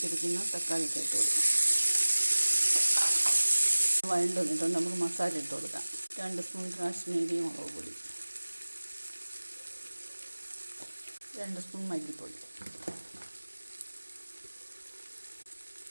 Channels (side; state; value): both; inverted; correlation -1.00